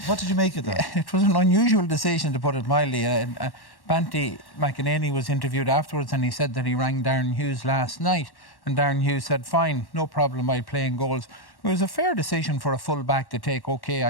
What did you make of that? It was an unusual decision, to put it mildly. Banty McEnany was interviewed afterwards, and he said that he rang Darren Hughes last night, and Darren Hughes said, fine, no problem, I'll play in goals. It was a fair decision for a full-back to take. OK,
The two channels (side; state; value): right; late; 1.1 ms